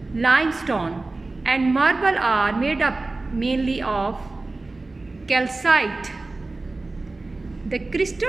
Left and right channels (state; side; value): quieter; left; 3.3 dB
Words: limestone and marble are made up mainly of calcite. The